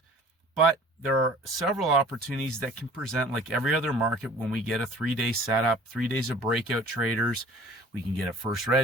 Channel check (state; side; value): normal; both; correlation 0.48